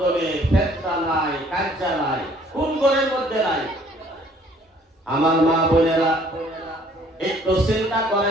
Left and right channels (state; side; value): normal; both; correlation 0.59